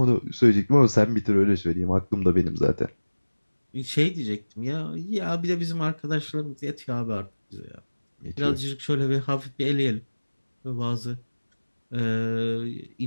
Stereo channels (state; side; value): inverted; both; correlation -1.00